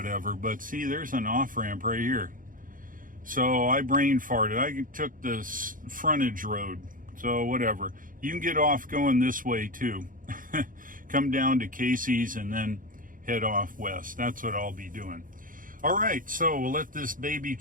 But see, there's an off-ramp right here. So I brain farted. I took this frontage road. So whatever. You can get off going this way too. Come down to Casey's and then head off west. That's what I'll be doing. All right, so we'll let this baby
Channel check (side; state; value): left; late; 0.40 ms